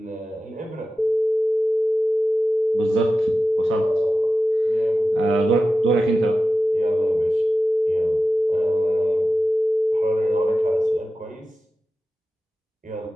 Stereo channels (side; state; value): both; normal; correlation 0.93